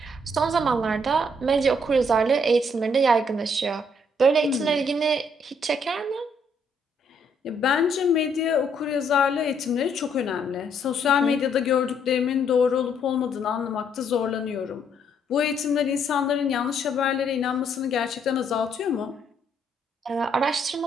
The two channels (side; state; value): both; normal; correlation 0.69